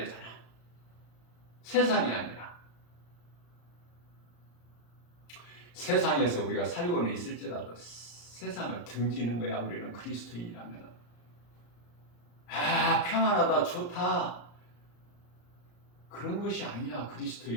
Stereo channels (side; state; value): right; late; 34 ms